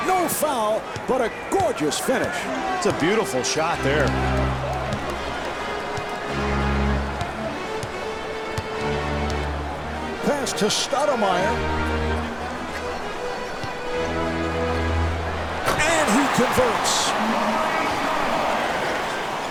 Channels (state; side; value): identical; both; correlation 1.00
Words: No foul, but a gorgeous finish. It's a beautiful shot there. Pass to Stoudemire. And he converts.